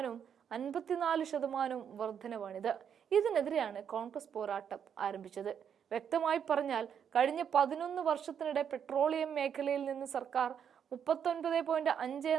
54% വർധനവാണിത്. ഇതിനെതിരെയാണ് കോൺഗ്രസ് പോരാട്ടം ആരംഭിച്ചത്. വ്യക്തമായി പറഞ്ഞാൽ, കഴിഞ്ഞ 11 വർഷത്തിനിടെ പെട്രോളിയം മേഖലയിൽ നിന്ന് സർക്കാർ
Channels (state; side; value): quieter; left; 8.1 dB